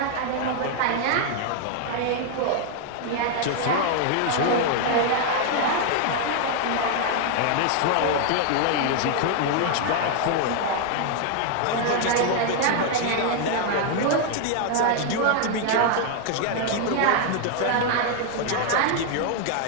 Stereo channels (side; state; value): both; different; correlation 0.00